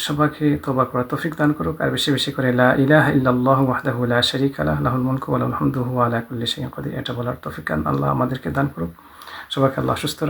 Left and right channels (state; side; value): identical; both; correlation 1.00